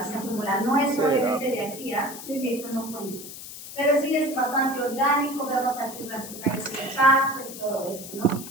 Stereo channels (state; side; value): noise; left; hiss, 12 dB below the sound